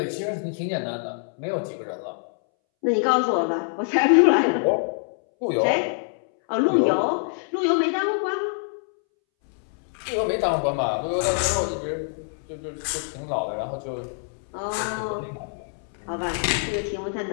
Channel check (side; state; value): right; silent; 62 dB below the other